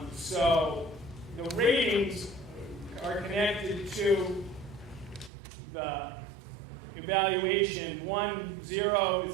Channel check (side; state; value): left; drops out; at 5.3 s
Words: So the ratings are connected to the evaluation 1, 0,